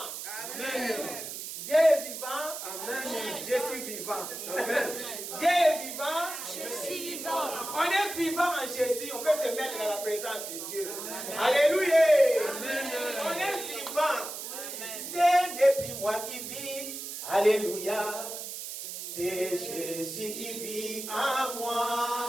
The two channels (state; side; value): noise; right; hiss, 8 dB below the sound